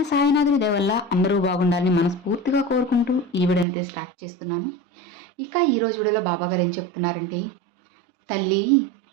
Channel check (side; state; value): left; drops out; at 3.7 s